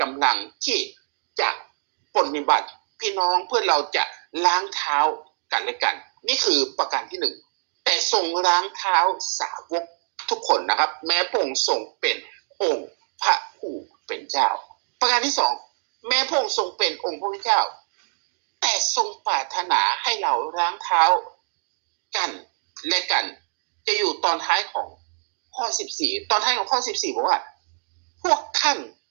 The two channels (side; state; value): left; silent; digital silence